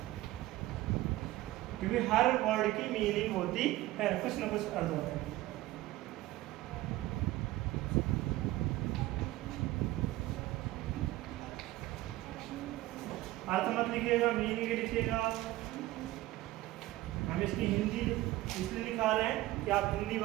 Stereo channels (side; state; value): left; quieter; 17.0 dB